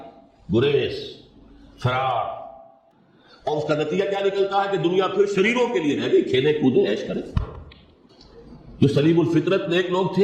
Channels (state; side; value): identical; both; correlation 1.00